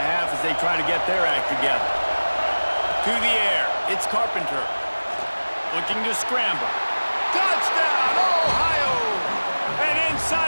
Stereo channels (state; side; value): inverted; both; correlation -1.00